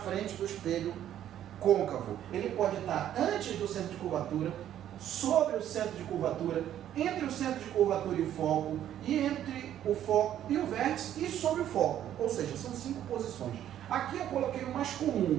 do espelho côncavo. Ele pode estar antes do centro de curvatura, sobre o centro de curvatura, entre o centro de curvatura e o foco e entre o foco e o vértice e sobre o foco, ou seja, são 5 posições. Aqui eu coloquei o mais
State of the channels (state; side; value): quieter; left; 11.2 dB